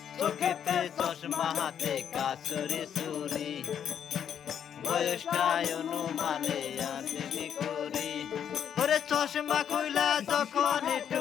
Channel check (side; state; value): right; quieter; 8.7 dB